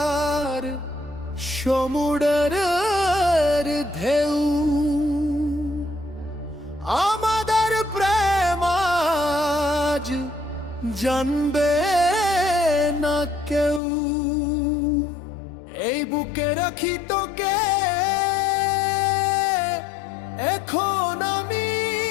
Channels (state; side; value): drops out; right; at 13.8 s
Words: সমুদ্রের ঢেউ আমাদের প্রেম আজ জানবে না কেউ। এই বুকে রাখি তোকে এখন আমি,